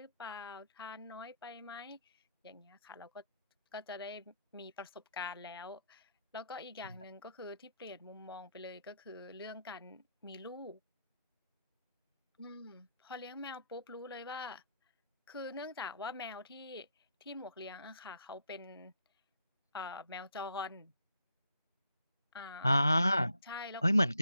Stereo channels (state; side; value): inverted; both; correlation -0.78